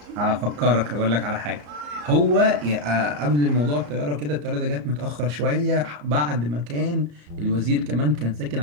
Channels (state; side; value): late; left; 34 ms